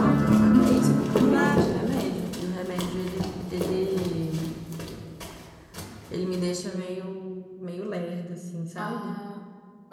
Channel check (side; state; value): both; identical; correlation 1.00